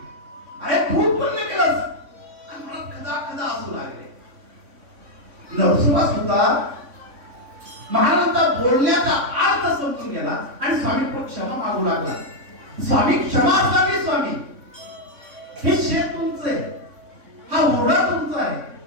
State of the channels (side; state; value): left; late; 3.6 ms